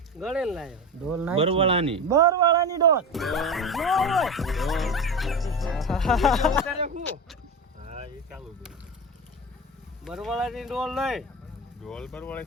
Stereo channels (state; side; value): normal; both; correlation 0.24